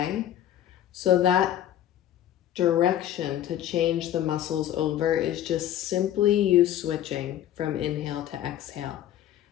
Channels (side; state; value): right; quieter; 11.7 dB